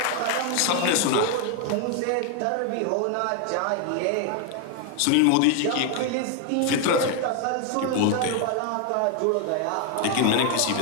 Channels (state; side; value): different; both; correlation 0.01